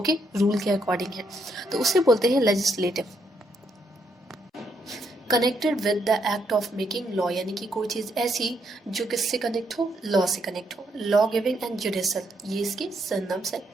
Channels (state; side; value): normal; both; correlation 0.76